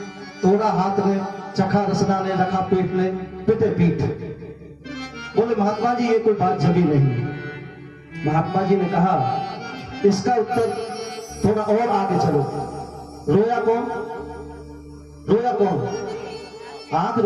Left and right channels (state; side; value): identical; both; correlation 1.00